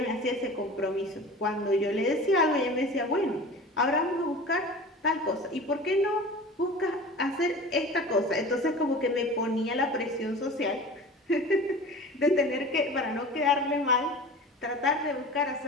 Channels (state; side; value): normal; both; correlation 0.37